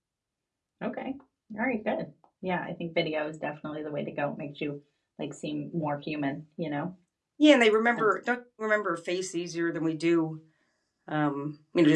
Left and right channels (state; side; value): identical; both; correlation 1.00